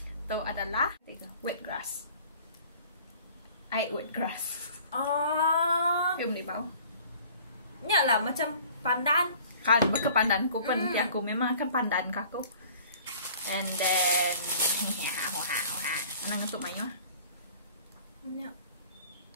Itu adalah wet grass. I ate wet grass. Film di bawah. Nyak lah macam pandan. Kali ke pandan ku pun aku memang akan pandan aku. And then anang untuk main lah. Nyak.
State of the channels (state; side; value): inverted; both; correlation -0.50